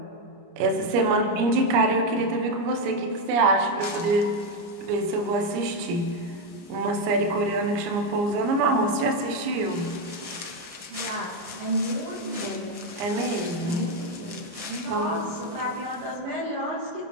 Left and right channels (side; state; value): left; late; 29 ms